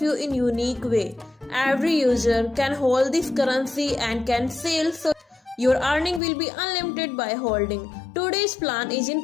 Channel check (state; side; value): drops out; right; at 6.2 s